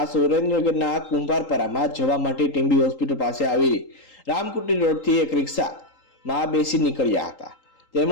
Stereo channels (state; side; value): late; right; 3.8 ms